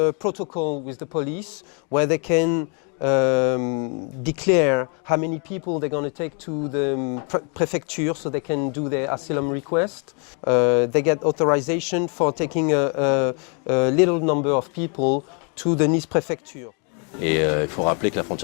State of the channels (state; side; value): quieter; right; 37.7 dB